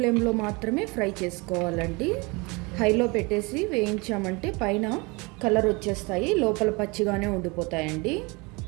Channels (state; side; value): quieter; left; 27.0 dB